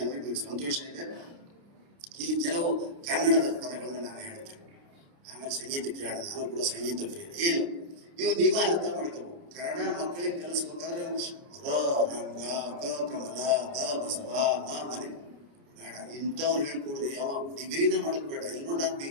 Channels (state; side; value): late; left; 29 ms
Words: ನನಗೆ ಸಂತೋಷ ಇದೆ. ಇಲ್ಲಿ ಕೆಲವು ಕನ್ನಡದ ಪದಗಳನ್ನ ನಾನು ಹೇಳ್ತೇನೆ, ಆಮೇಲೆ ಸಂಗೀತ ಕೇಳೋಣ. ನಾನು ಕೂಡ ಸಂಗೀತ ಪ್ರಿಯ. ಏನು ಇವು ನೀವು ಅರ್ಥ ಮಾಡ್ಕೋಬೇಕು. ಕನ್ನಡ ಮಕ್ಕಳಿಗೆ ಕಲಿಸ್ಬೇಕಾದ್ರೆ ರಂಗ, ಕಮಲ, ಬಸವ, ಮನೆ ಬೇಡ ಇಂಥವ್ರು ಹೇಳ್ಕೊಡ್ರಿ. ಯಾವ ಡಿಗ್ರಿನ ಮಾಡೋದು ಬೇಡ. ಇಲ್ಲಿ ನೋಡಿ ನಾನು